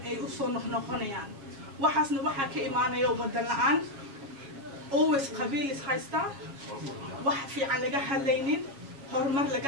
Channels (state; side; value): late; left; 7.3 ms